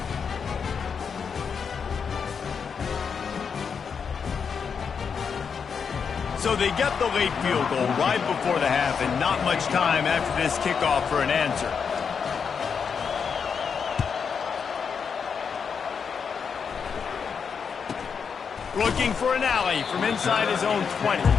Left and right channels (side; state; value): right; quieter; 6.3 dB